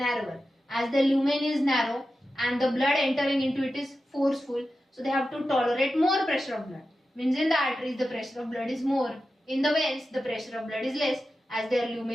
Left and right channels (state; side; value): normal; both; correlation 0.92